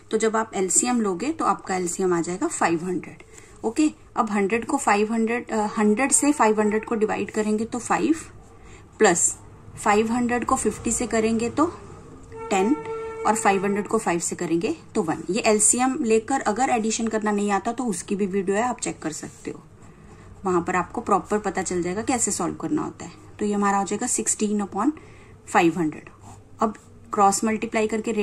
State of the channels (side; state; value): both; identical; correlation 1.00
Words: तो जब आप LCM लोगे तो आपका LCM आ जाएगा 500, ओके। अब 100 से 500 को डिवाइड करेंगे तो 5 प्लस 500 को 50 से करेंगे तो 10 और 500 को 5 से करेंगे तो 1। ये LCM लेकर अगर एडिशन करना नहीं आता तो उसकी भी वीडियो है, आप चेक कर सकते हो, वहां पर आपको प्रॉपर पता चल जाएगा कैसे सॉल्व करना होता है। तो ये हमारा हो जाएगा 16/500। अब क्रॉस मल्टीप्लाई करके